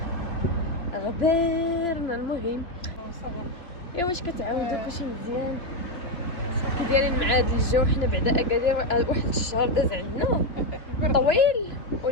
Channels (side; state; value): right; late; 2.9 ms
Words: غبرنا المهم. واش كتعاودوا كلشي مزيان؟ كي دايرين مع هذا الجو؟ حنا بعدا اكادير واحد الشهر داز عندنا طويل